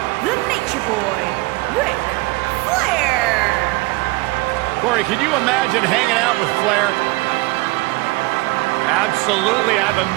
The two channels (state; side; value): quieter; left; 23.1 dB